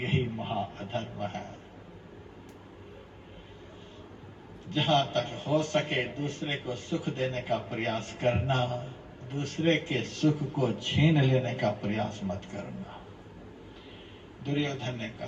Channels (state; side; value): identical; both; correlation 1.00